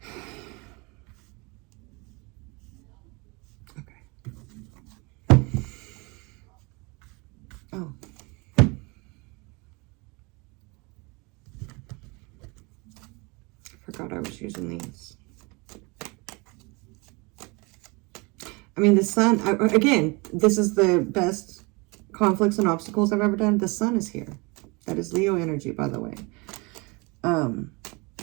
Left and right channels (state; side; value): quieter; left; 27.7 dB